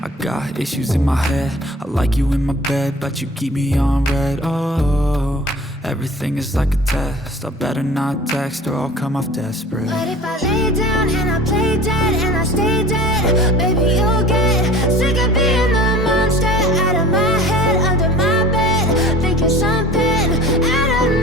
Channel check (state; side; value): normal; both; correlation 0.43